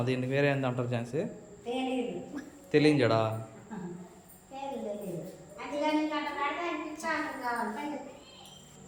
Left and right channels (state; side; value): identical; both; correlation 1.00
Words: దీన్ని, వేరే ఏంది అంటారు ఛాన్సీ? తెలియని జడా?